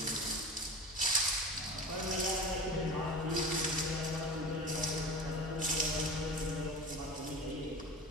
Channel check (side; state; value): both; normal; correlation 0.33